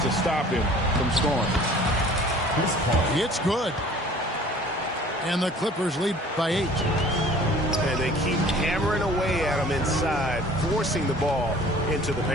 to stop him from scoring. It's good. And the Clippers lead by 8. And they keep hammering away at him inside, forcing the ball into the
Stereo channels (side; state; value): both; normal; correlation 0.49